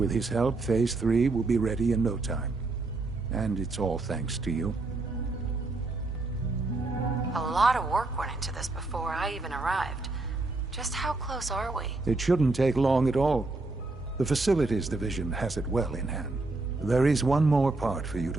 his help, Phase 3 will be ready in no time. And it's all thanks to you. A lot of work went into this before I even arrived. Just how close are we? It shouldn't take long at all. The Facilities Division has it well in hand. There is one more part for you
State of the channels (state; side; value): quieter; left; 3.3 dB